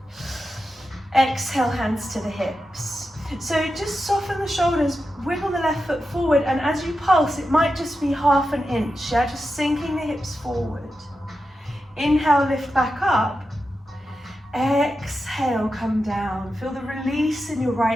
Exhale, hands to the hips. So just soften the shoulders, wiggle the left foot forward, and as you pulse, it might just be half an inch, yeah? Just sinking the hips forward. Inhale, lift back up. Exhale, come down. Feel the release in your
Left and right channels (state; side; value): normal; both; correlation 0.90